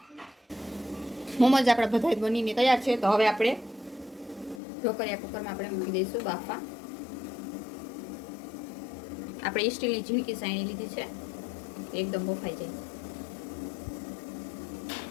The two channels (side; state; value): right; drops out; at 4.6 s